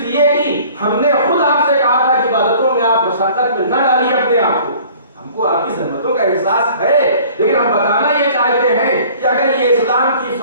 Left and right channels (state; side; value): inverted; both; correlation -0.50